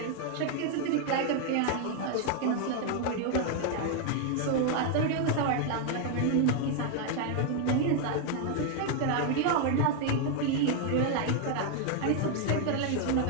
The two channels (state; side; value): different; both; correlation 0.00